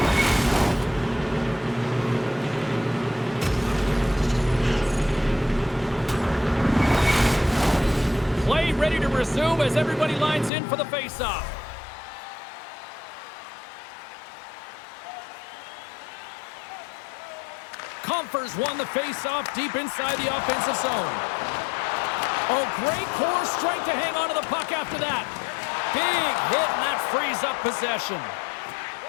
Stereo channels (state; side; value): drops out; right; at 10.5 s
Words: Play ready to resume as everybody lines in for the face-off. Comfers won the face-off deep inside the offensive zone. Oh, great core strength to hang on to the puck after that. Big hit, and that frees up possession.